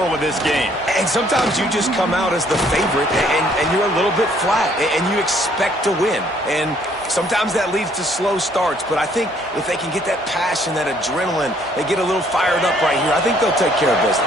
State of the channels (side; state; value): both; normal; correlation 0.64